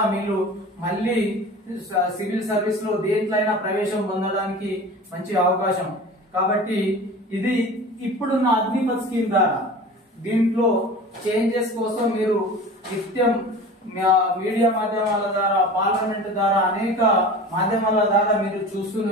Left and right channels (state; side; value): normal; both; correlation 0.37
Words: మీరు మళ్ళీ సివిల్ సర్వీస్ లో దేంట్లైనా ప్రవేశం పొందడానికి మంచి అవకాశం. కాబట్టి ఇది ఇప్పుడున్న అగ్నిపథ్ స్కీమ్ ద్వారా దీంట్లో చేంజెస్ కోసం మీరు నిత్యం మీడియా మాధ్యమాల ద్వారా, పార్లమెంట్ ద్వారా, అనేక మాధ్యమాల ద్వారా మీరు